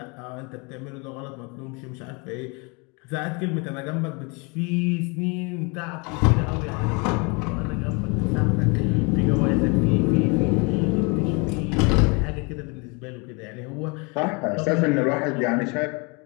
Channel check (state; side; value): quieter; right; 30.4 dB